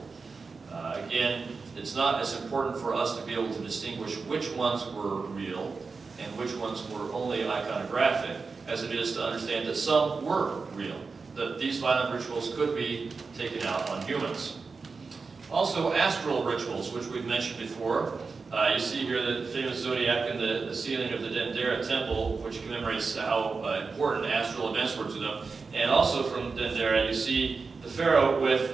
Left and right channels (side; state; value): left; quieter; 4.6 dB